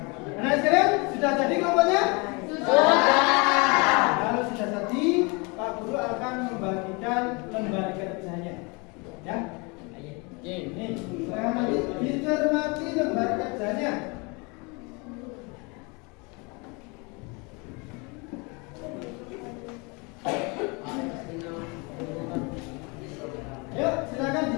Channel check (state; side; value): quieter; right; 29.5 dB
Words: Anak sekalian, sudah jadi kelompoknya? Sudah. Kalau sudah jadi, Pak Guru akan membagikan lembar kerjanya. Ya. Ini, silakan nanti dicermati lembar kerjanya. Yuk, silakan